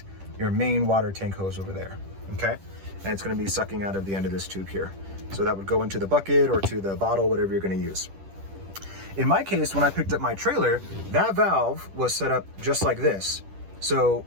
your main water tank hose over there, okay? And it's going to be sucking out of the end of this tube here. So that would go into the bucket or to the bottle, whatever you're going to use. In my case, when I picked up my trailer, that valve was set up just like this. So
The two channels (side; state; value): left; late; 10 ms